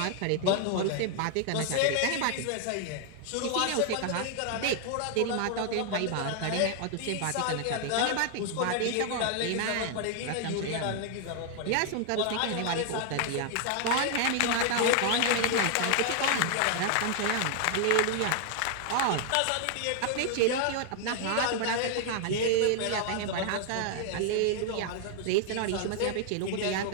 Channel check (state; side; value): different; both; correlation 0.00